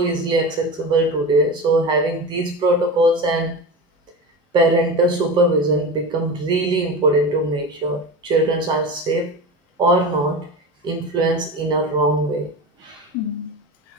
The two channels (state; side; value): normal; both; correlation 0.27